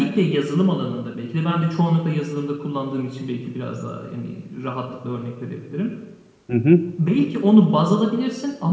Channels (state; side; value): identical; both; correlation 1.00